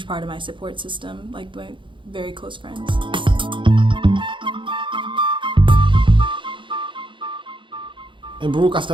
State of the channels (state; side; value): late; left; 0.24 ms